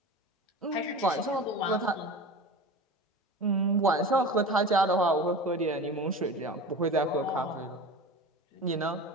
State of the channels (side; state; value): both; normal; correlation 0.32